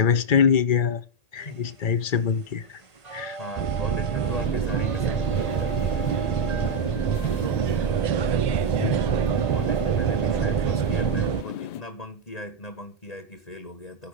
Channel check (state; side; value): late; right; 1.8 ms